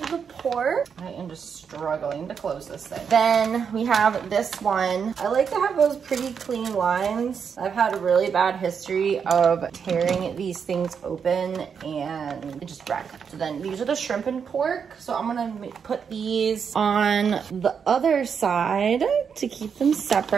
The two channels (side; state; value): left; quieter; 6.7 dB